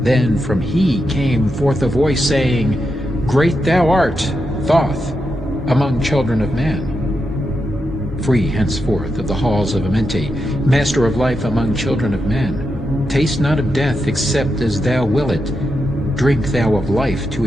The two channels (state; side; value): normal; both; correlation 0.86